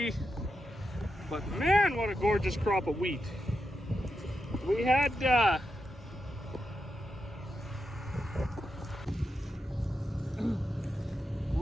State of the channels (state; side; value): normal; both; correlation 0.87